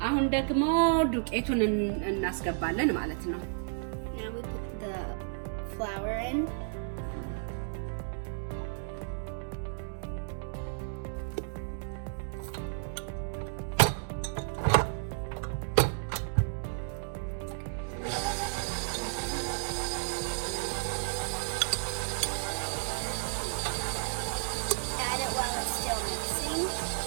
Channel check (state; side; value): silent; left; digital silence